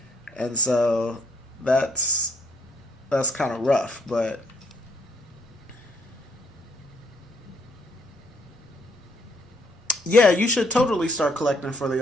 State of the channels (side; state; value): both; normal; correlation 0.69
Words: and so that's kind of rough, but. Yeah, you should totally start collecting for